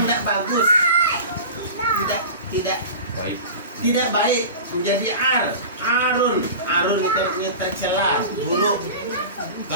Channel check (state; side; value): inverted; both; correlation -0.33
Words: tidak bagus, tidak baik, menjadi arun itu artinya tercela, buruk.